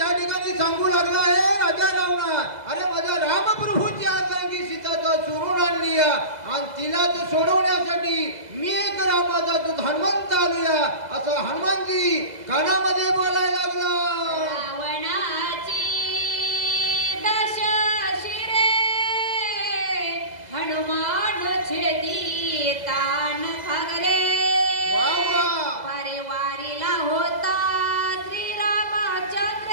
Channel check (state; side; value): late; left; 2.0 ms